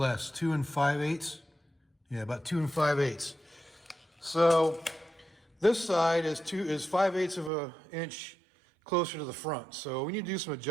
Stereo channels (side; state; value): left; drops out; at 7.5 s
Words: 2 5/8. Yeah, about 2 5/8. So this side is 5/8 of an inch closer to the front. So we need to do some